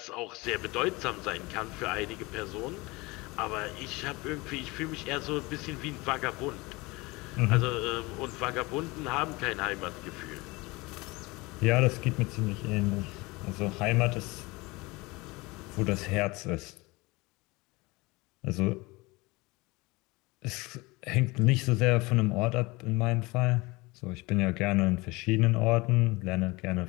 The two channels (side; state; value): right; quieter; 23.6 dB